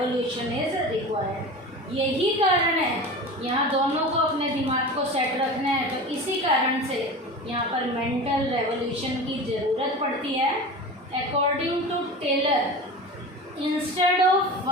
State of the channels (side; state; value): both; normal; correlation 0.32